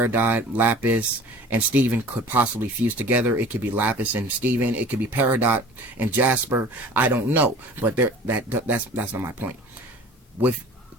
Lapis, and Steven could possibly fuse together. It could be Lapis and Steven. It could be Peridot and Jasper. I don't know, but that's not my point. With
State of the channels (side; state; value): both; normal; correlation 0.44